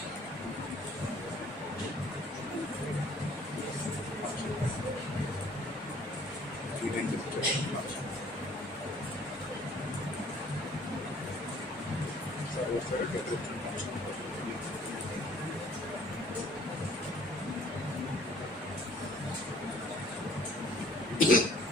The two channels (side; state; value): both; normal; correlation 0.56